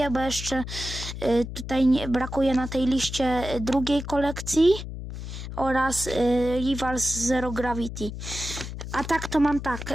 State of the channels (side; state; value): left; noise; hum, 8 dB below the sound